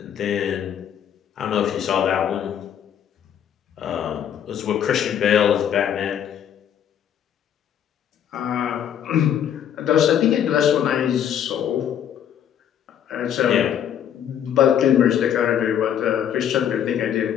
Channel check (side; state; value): right; quieter; 9.5 dB